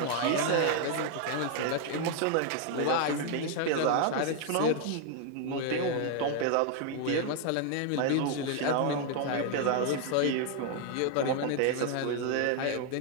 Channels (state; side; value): different; both; correlation 0.00